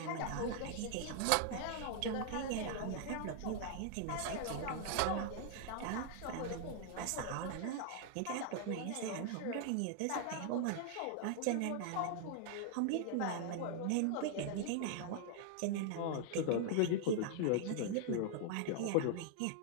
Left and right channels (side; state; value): both; different; correlation 0.00